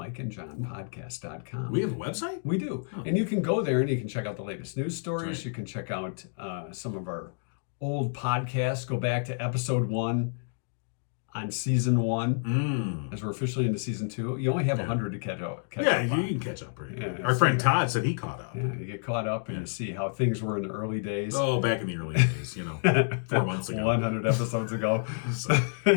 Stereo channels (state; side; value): silent; right; digital silence